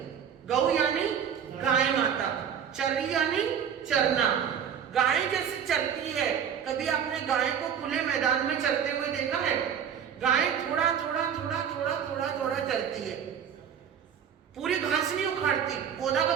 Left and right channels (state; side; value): quieter; left; 8.2 dB